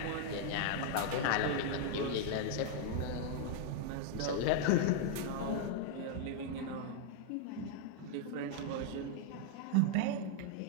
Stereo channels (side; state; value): both; different; correlation 0.00